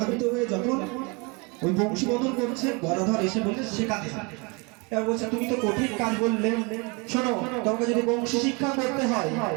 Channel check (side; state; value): left; quieter; 29.0 dB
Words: হয়ে যখন ওই বংশীবদল করছে, গদাধর এসে বলছে শেখাতে হবে। এবার বলছে তুমি তো কঠিন কাজ বললে, শোনো তোমাকে যদি বংশী শিক্ষা করতে হয়